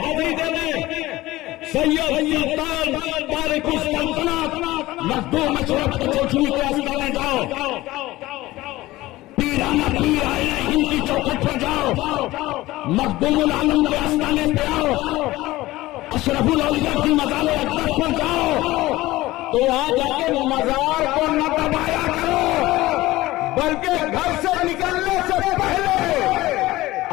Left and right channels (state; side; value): quieter; right; 17.9 dB